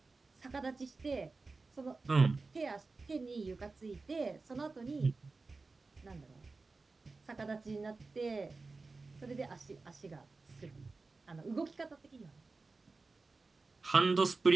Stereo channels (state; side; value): quieter; left; 3.8 dB